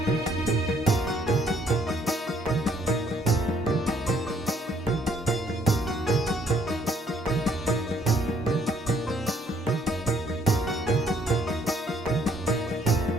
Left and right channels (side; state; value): both; normal; correlation 0.65